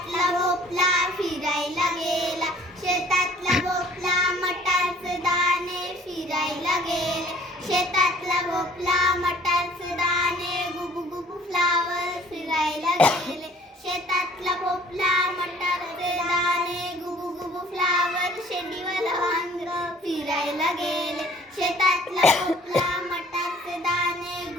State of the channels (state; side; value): normal; both; correlation 0.54